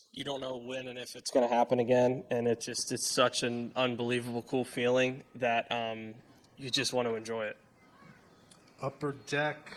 you don't know when and if it's going to happen again, and it's such an unbelievable cool feeling that you just want to enjoy it. Upper deck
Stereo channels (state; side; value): identical; both; correlation 1.00